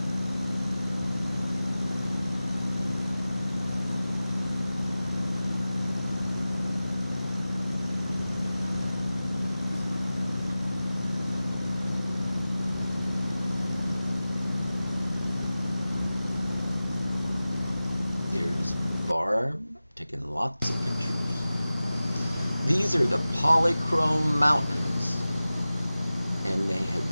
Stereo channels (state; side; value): inverted; both; correlation -0.96